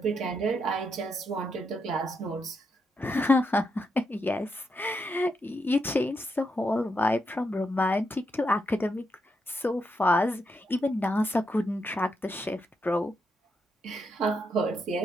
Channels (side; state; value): both; normal; correlation 0.81